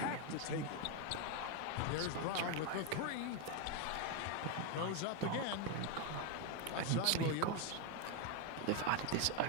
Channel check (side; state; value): both; different; correlation 0.02